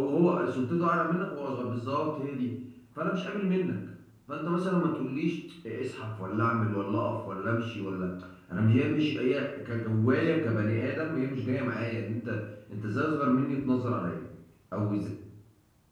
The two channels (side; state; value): both; identical; correlation 1.00